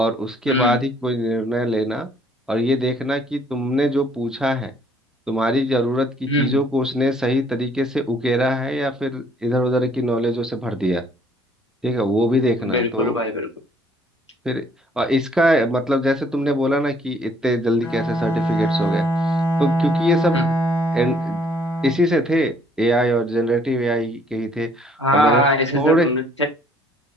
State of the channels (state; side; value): normal; both; correlation 0.62